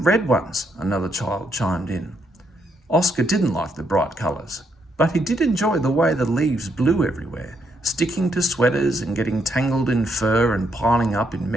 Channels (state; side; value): normal; both; correlation 0.76